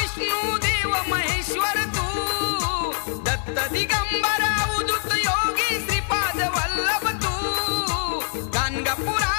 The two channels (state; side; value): silent; right; 63 dB below the other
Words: देव महेश्वर तू दत्त दिगंबरा उदित योगी श्रीपाद वल्लभ तू